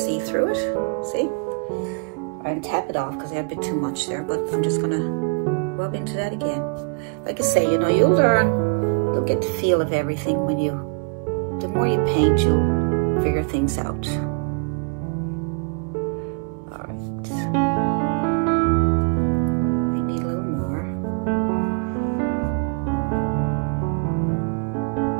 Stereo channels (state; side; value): quieter; left; 36.3 dB